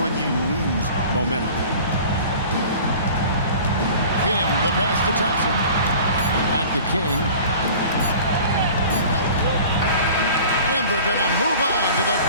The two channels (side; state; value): both; inverted; correlation -0.43